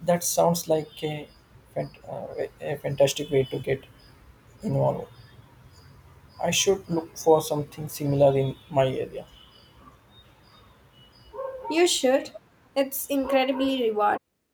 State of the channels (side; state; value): both; identical; correlation 1.00